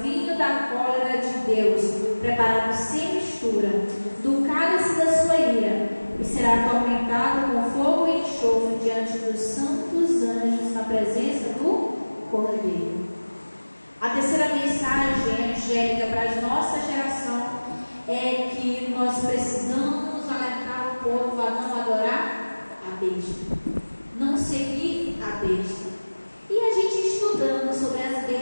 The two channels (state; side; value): inverted; both; correlation -1.00